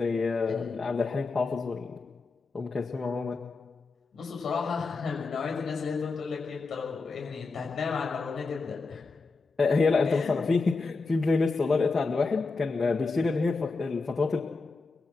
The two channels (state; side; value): quieter; right; 4.0 dB